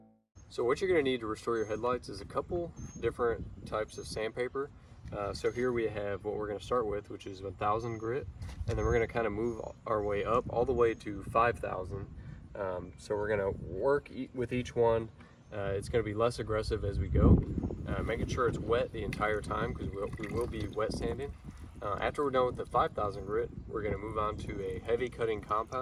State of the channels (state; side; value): identical; both; correlation 1.00